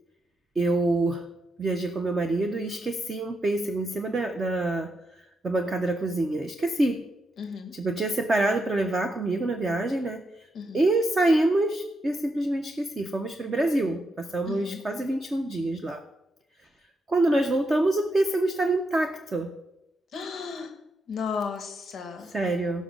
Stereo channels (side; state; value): both; normal; correlation 0.82